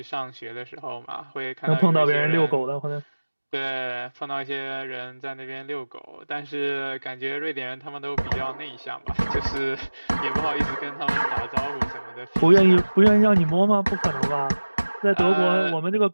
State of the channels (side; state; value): both; inverted; correlation -1.00